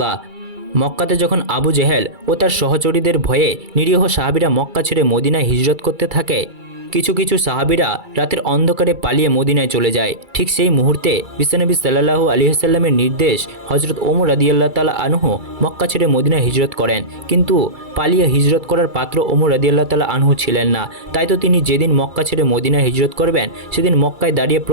মক্কাতে যখন আবু জেহেল ও তার সহচরীদের ভয়ে নিরীহ সাহাবীরা মক্কা ছেড়ে মদিনায় হিজরত করতে থাকে, কিছু কিছু সাহাবীরা রাতের অন্ধকারে পালিয়ে মদিনায় চলে যায়। ঠিক সেই মুহূর্তে বিশ্বনবী সাল্লাল্লাহু আলাইহি ওয়াসাল্লামের নির্দেশ হযরত ওমর রাদিয়াল্লাহু তাআলা আনহু মক্কা ছেড়ে মদিনায় হিজরত করেন, কিন্তু পালিয়ে হিজরত করার পাত্র ওমর রাদিয়াল্লাহু তাআলা আনহু ছিলেন না। তাই তো তিনি যেদিন মক্কা ছেড়ে মদিনায় হিজরত করবেন সেদিন মক্কায় দাঁড়িয়ে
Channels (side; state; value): left; late; 2.3 ms